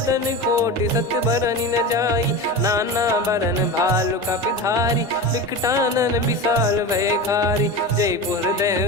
कोटि सत बरनि न जाई। नाना बरन भालु कपिधारी, विकटानन विशाल भयखारी। जयपुर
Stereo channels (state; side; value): normal; both; correlation 0.26